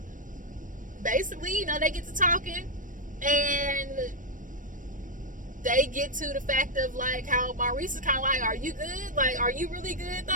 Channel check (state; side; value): late; left; 0.38 ms